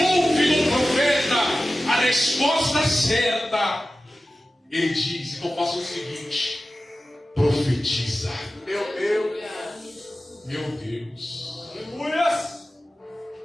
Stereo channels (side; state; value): both; normal; correlation 0.95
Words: do profeta a resposta certa, ele diz: então faça o seguinte, profetiza. Meu Deus. Meu Deus. Aleluia.